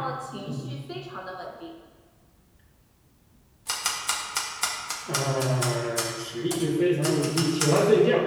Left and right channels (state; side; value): identical; both; correlation 1.00